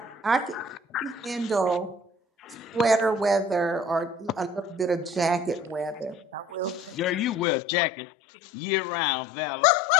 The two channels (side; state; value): right; drops out; at 7.5 s